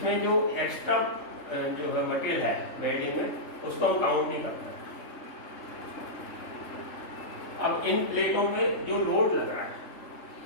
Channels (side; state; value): right; late; 3.3 ms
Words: जो एक्स्ट्रा जो है मटेरियल है वेल्डिंग में, उसको हम काउंट नहीं करते। अब इन प्लेटों में जो लोड लग रहा है